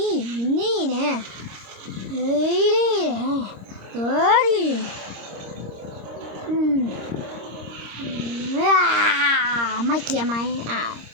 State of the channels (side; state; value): left; late; 26 ms